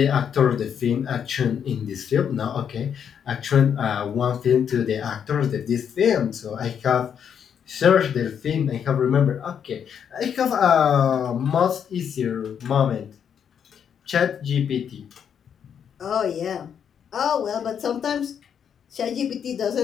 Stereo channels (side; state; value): right; quieter; 8.0 dB